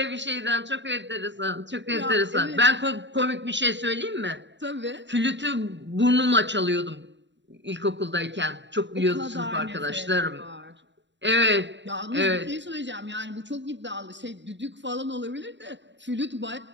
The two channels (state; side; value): late; left; 0.52 ms